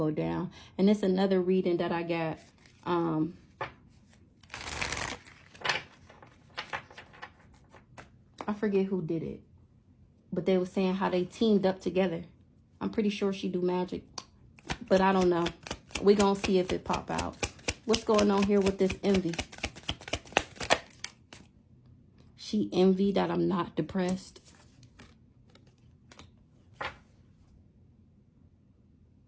down. And it's another reading that I got. I forget who did it. But they were saying how they teamed up together. I'm pretty sure she do magic. But I don't know. We're going to see if it pop out. What's going on here with this envy? She envied that I'm not depressed.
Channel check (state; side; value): identical; both; correlation 1.00